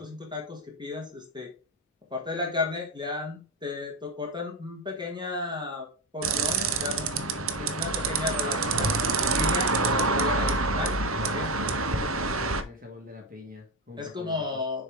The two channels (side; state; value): both; normal; correlation 0.12